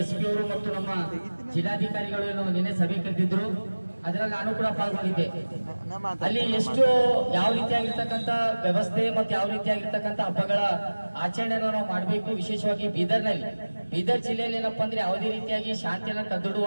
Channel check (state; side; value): inverted; both; correlation -1.00